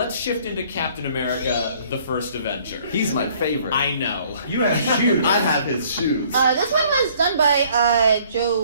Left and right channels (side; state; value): both; inverted; correlation -0.58